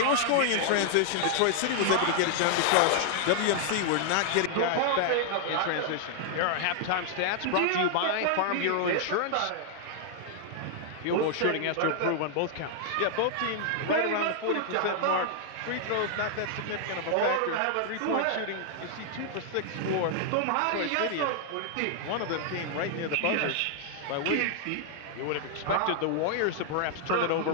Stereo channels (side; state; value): both; different; correlation 0.00